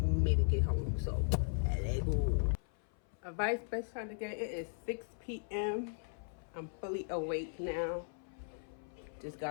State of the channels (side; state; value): right; silent; 53 dB below the other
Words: me to get home. So let's go. Advice best time to get it is 6 p.m. I'm fully awake now. Just